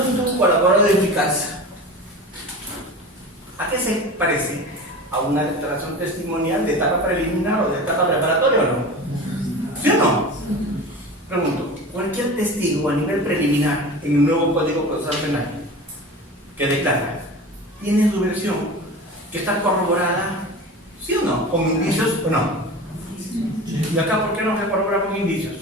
de un colaborador eficaz, ¿a qué se parece? ¿A una declaración testimonial de etapa preliminar o de etapa preparatoria o no? ¿Sí o no? Pregunto, cualquier testigo a nivel preliminar en el nuevo Código Procesal Penal que declara, tiene su versión que está corroborada, ¿sí o no? ¿Con indicios o no? ¿Y acá por qué no se corrobora con indicios?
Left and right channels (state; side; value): normal; both; correlation 0.33